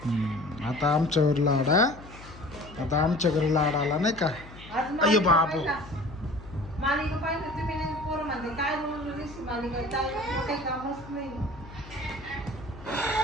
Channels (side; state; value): left; noise; hum, 17 dB below the sound